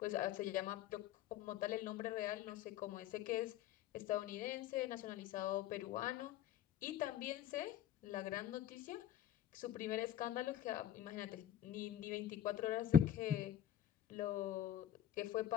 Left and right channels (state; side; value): quieter; right; 10.9 dB